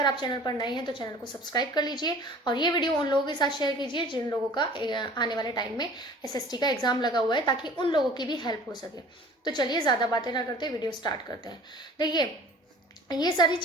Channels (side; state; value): both; normal; correlation 0.47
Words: आप चैनल पर नए हैं तो चैनल को सब्सक्राइब कर लीजिए और ये वीडियो उन लोगों के साथ शेयर कीजिए जिन लोगों का आने वाले टाइम में SST का एग्ज़ाम लगा हुआ है, ताकि उन लोगों की भी हेल्प हो सके। तो चलिए ज़्यादा बातें ना करते वीडियो स्टार्ट करते हैं। देखिए, ये सारी